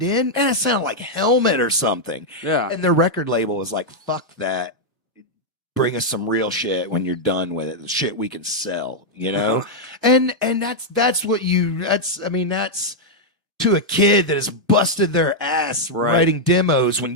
in, man, it sounded like Helmet or something. Yeah. And their record label was like, fuck that. Bring us some real shit when you're done with it. The shit we can sell, you know? And that's to a kid that has busted their ass writing demos when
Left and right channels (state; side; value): normal; both; correlation -0.03